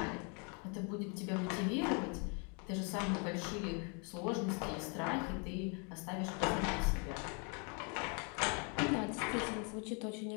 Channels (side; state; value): right; quieter; 36.3 dB